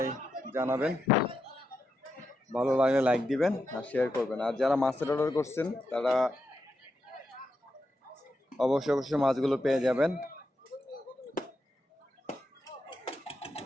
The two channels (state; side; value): normal; both; correlation 0.85